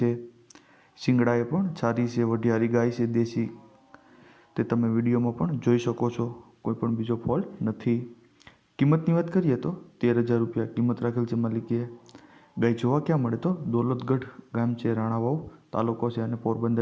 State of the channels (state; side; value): identical; both; correlation 1.00